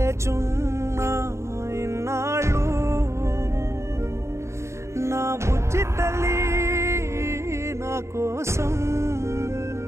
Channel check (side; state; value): left; late; 0.14 ms